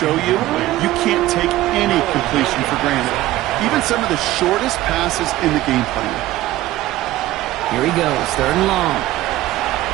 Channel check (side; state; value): left; quieter; 15.8 dB